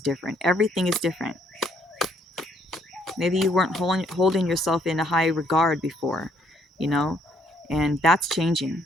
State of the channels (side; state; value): both; normal; correlation 0.68